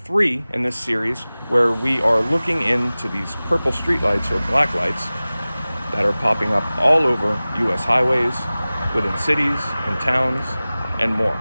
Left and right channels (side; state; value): both; inverted; correlation -0.98